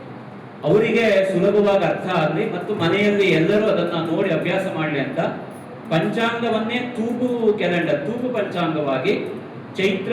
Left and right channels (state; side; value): identical; both; correlation 1.00